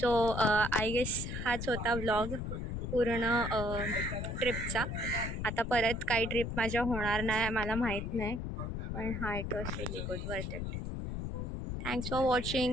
आय गेस हाच होता व्लॉग पूर्ण ट्रिपचा. आता परत काही ट्रिप माझ्या होणार नाही मला माहीत नाही. पण हा it was really good, worth it. Thanks for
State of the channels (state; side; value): noise; left; rumble, 4 dB below the sound